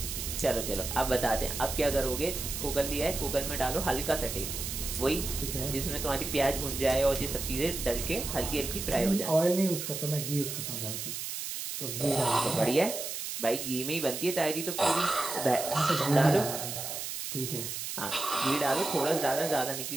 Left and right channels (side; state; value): right; noise; hiss, 5 dB below the sound